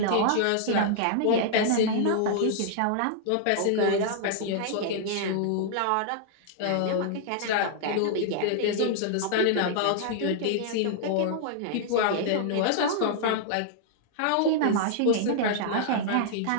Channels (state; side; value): different; both; correlation -0.01